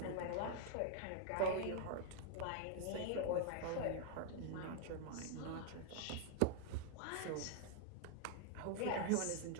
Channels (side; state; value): both; different; correlation 0.00